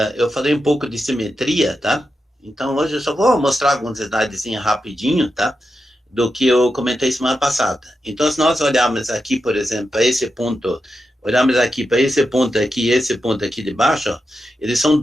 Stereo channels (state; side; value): normal; both; correlation 0.88